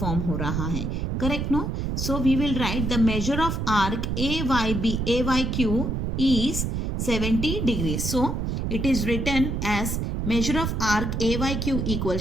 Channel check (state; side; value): noise; right; rumble, 1 dB below the sound